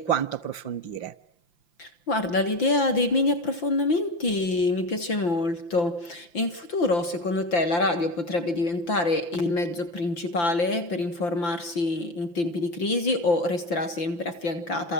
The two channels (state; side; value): late; right; 5.8 ms